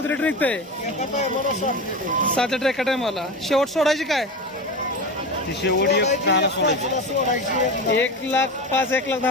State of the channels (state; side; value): normal; both; correlation 0.25